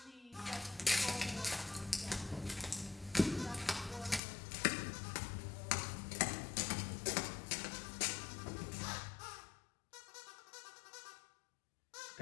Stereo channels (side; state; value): right; drops out; at 4.2 s